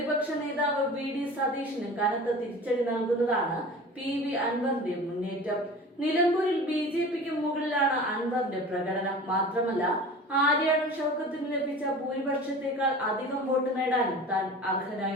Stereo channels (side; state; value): both; normal; correlation 0.38